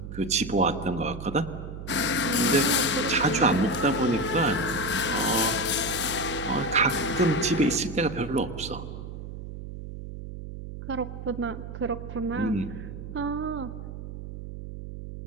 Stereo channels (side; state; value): right; noise; hum, 10 dB below the sound